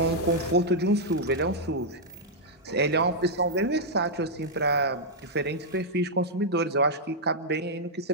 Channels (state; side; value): normal; both; correlation -0.06